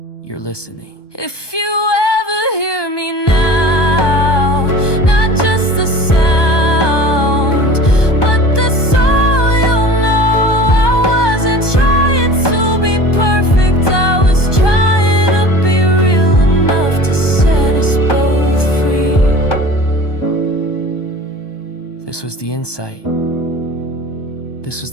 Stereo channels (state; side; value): late; right; 1.2 ms